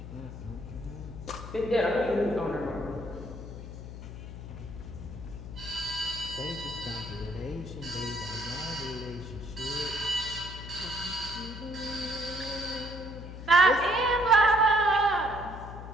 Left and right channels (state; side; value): noise; left; hum, 10 dB below the sound